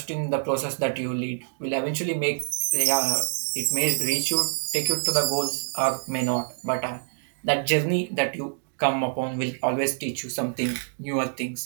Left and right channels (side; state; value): left; silent; digital silence